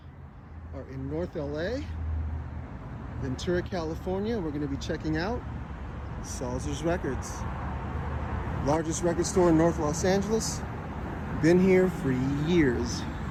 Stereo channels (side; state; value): both; identical; correlation 1.00